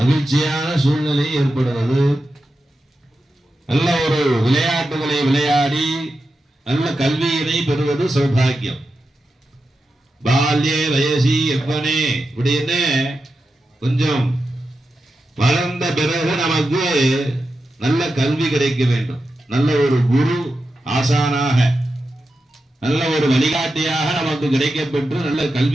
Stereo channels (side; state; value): both; normal; correlation 0.90